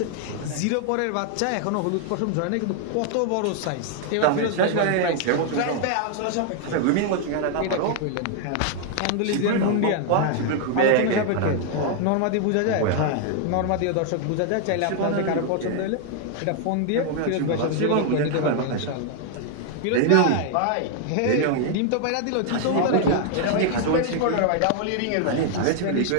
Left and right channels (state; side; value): different; both; correlation 0.00